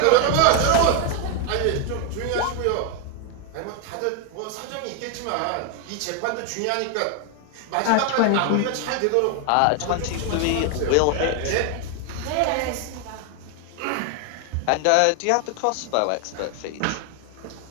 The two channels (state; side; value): different; both; correlation 0.01